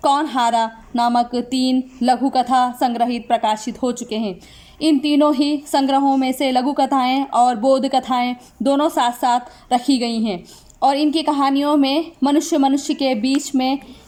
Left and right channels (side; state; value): both; identical; correlation 1.00